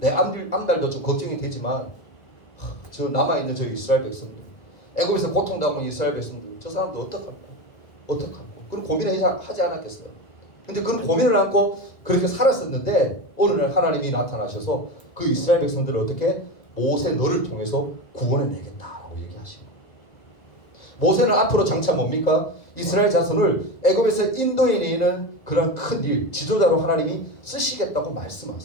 앞날도 좀 걱정이 되지만 저 남아있는 저 이스라엘 백성들, 애굽에서 고통당하는 이스라엘 백성들, 저 사람도 어떡할까? 그런 고민을 하지 않았겠어요? 근데 그런 고민을 안고 그렇게 살았었는데 어느 날 하나님이 나타나셔서 그 이스라엘 백성들을 어떻게 모세 너를 통해서 구원해내겠다라고 얘기하시고, 모세는 앞으로 장차 뭡니까? 이스라엘 자손을 애굽에서 인도해내는 그런 큰 일, 지도자로 하나님이 쓰시겠다고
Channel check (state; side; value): late; right; 1.9 ms